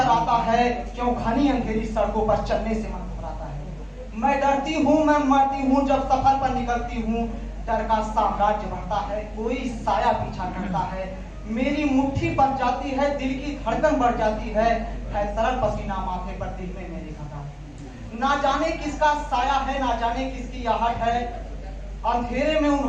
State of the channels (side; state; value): both; identical; correlation 1.00